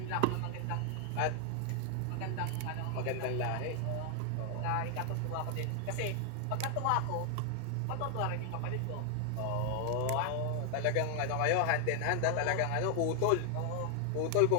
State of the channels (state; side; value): different; both; correlation 0.00